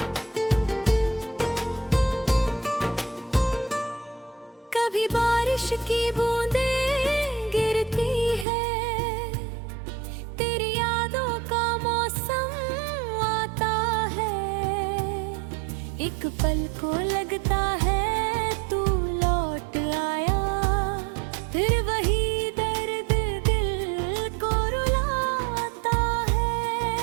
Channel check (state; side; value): drops out; left; at 8.5 s